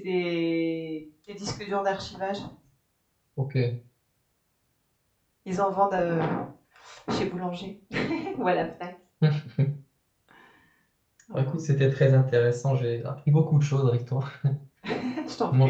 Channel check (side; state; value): both; identical; correlation 1.00